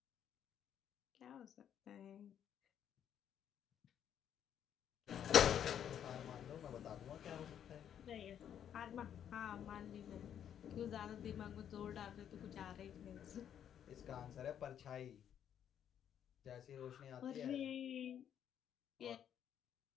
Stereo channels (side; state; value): right; quieter; 9.4 dB